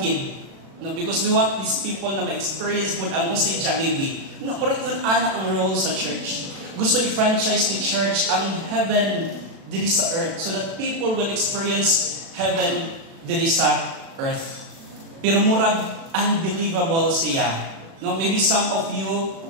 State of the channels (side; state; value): left; late; 36 ms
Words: no? Because we want these people na ma-experience mo ang usay Jollibee. No, pero yun ana ang role sa church. Gusto i-franchise ni church ang heaven diri sa earth so that people will experience heaven diri sa earth. Pero murag unbelievable siya. No, maybe some of you